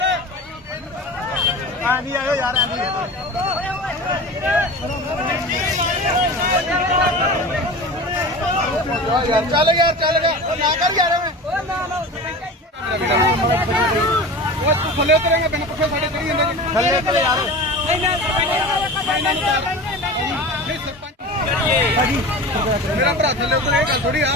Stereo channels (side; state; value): both; normal; correlation 0.33